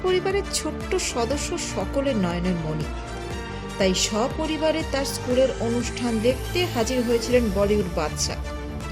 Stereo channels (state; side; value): identical; both; correlation 1.00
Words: পরিবারের ছোট্ট সদস্য সকলের নয়নের মণি। তাই সপরিবারে তার স্কুলের অনুষ্ঠান দেখতে হাজির হয়েছিলেন বলিউড বাদশা।